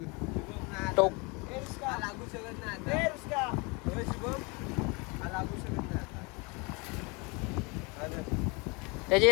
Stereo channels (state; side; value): quieter; right; 29.0 dB